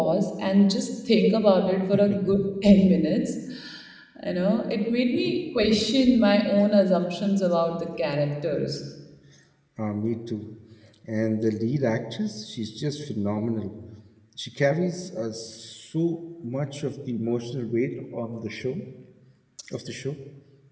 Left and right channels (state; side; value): identical; both; correlation 1.00